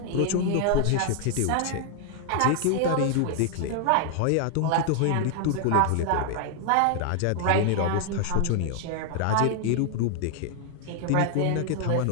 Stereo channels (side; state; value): both; different; correlation 0.00